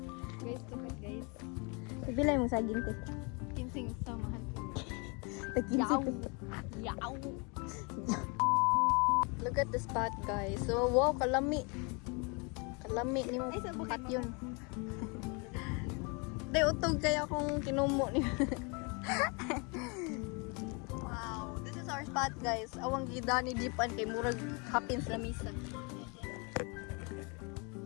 Guys, tukat guys. Bilay mo saging te. Kinsing samahan. Yaw. Look at the spot guys. So wow, kalami. Kalami ni mo. Kat yun. Day, utog kaya kung kinumo niya. Wow, this is our spot, guys. Awang gida ni Dipan kay murag hapins na misa.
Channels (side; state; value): right; quieter; 31.9 dB